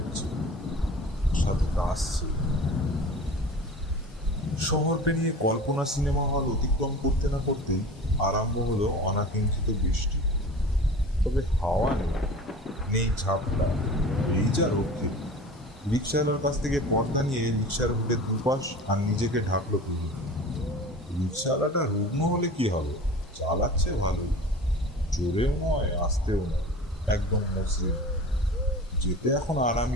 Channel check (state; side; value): normal; both; correlation 0.38